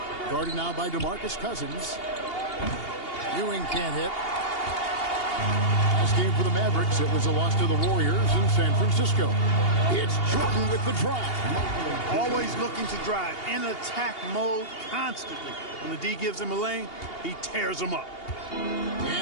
Guarded now by DeMarcus Cousins. Ewing can't hit. Last game for the Mavericks, it was a loss to the Warriors in San Francisco. It's Jordan with the drive. Always looking to drive in attack mode constantly. When the D gives him a lane, he tears him up.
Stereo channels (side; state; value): right; late; 2.8 ms